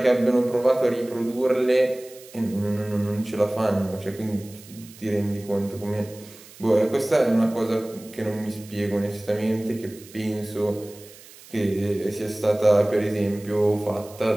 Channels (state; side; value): noise; right; hiss, 21 dB below the sound